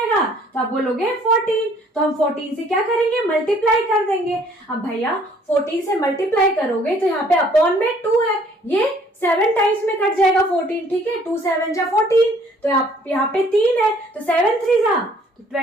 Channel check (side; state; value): both; normal; correlation 0.59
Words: तो आप बोलोगे 14। तो हम 14 से क्या करेंगे? मल्टीप्लाई कर देंगे। अब भैया 14 से मल्टीप्लाई करोगे तो यहाँ पे अपॉन में 2 है, ये 7 टाइम्स में कट जाएगा 14, ठीक है। 2 7 जा 14, तो यहाँ पे 3 है, तो 7 3 जा तो